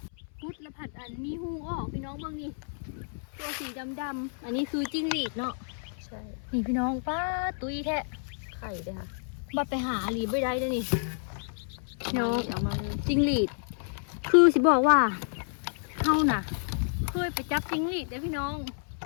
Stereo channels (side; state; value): right; silent; 58 dB below the other